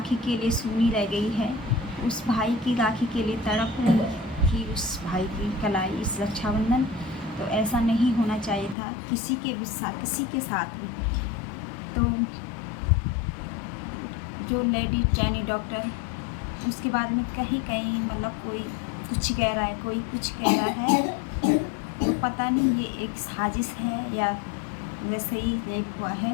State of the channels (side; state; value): right; drops out; at 8.8 s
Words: के लिए सूनी रह गई है, उस भाई की राखी के लिए तड़प रही थी उस भाई की कलाई इस रक्षाबंधन। तो ऐसा नहीं होना चाहिए था किसी के साथ भी। तो जो लेडी ट्रेनी डॉक्टर, उसके बारे में कहीं कहीं मतलब कोई कुछ कह रहा है, कोई कुछ कह रहा है, तो पता नहीं ये एक साजिश है या वैसे ही रेप हुआ है